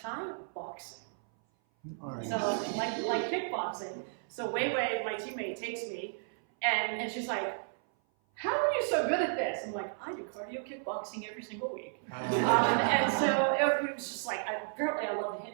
boxing. All right. So like kickboxing. So Wei, my teammate, takes me and she's like, "How are you so good at this?" I'm like, "I do cardio kickboxing every single week." And so it was just like, apparently I love to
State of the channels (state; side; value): silent; left; 56 dB below the other